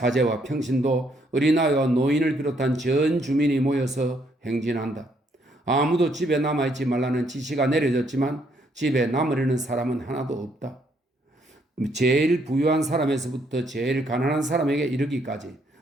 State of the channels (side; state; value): both; normal; correlation 0.71